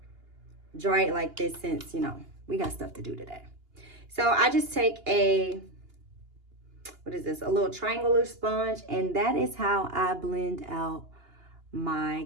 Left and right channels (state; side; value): late; left; 2.8 ms